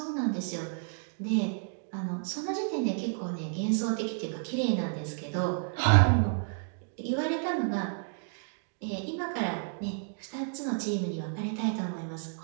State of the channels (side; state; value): left; silent; 57 dB below the other